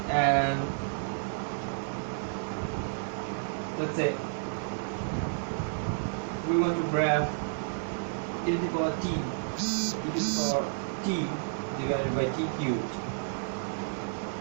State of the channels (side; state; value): left; silent; digital silence